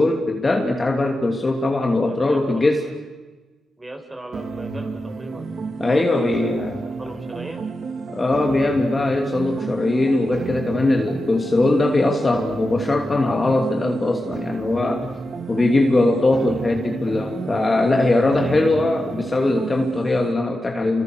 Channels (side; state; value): both; normal; correlation 0.91